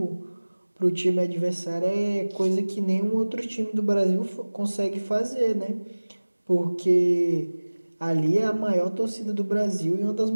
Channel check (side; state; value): both; inverted; correlation -1.00